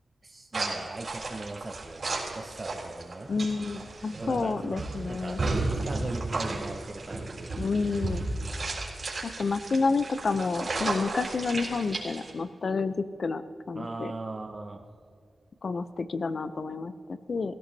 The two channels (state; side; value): normal; both; correlation 0.90